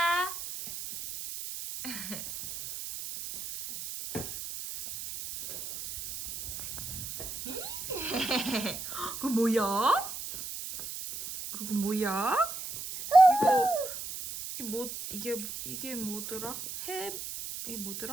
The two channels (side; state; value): right; noise; hiss, 8 dB below the sound